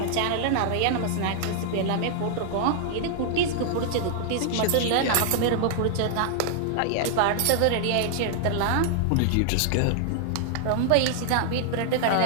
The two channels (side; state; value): both; different; correlation -0.01